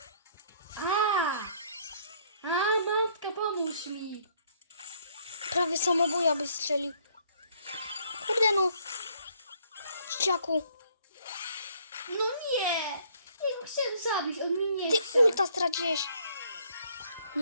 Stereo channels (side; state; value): both; inverted; correlation -0.63